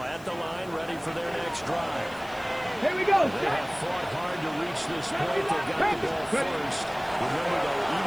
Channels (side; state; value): left; noise; hiss, 23 dB below the sound